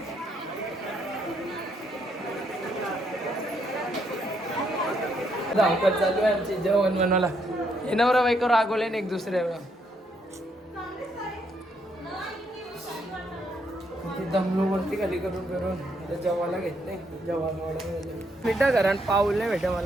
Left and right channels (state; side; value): normal; both; correlation 0.74